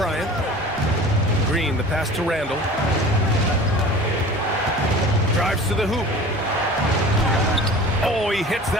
Green, the pass to Randall. Drives to the hoop. Oh, he hits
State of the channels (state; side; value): normal; both; correlation 0.41